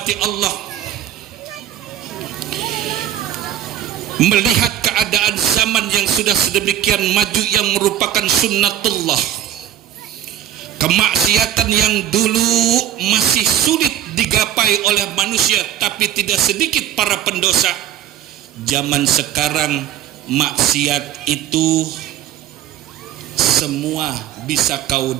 Allah, melihat keadaan zaman yang sudah sedemikian maju yang merupakan sunnatullah, kemaksiatan yang dulu masih sulit digapai oleh manusia tapi tidak sedikit para pendosa, zaman sekarang maksiat itu semua bisa kau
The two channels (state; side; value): quieter; left; 11.2 dB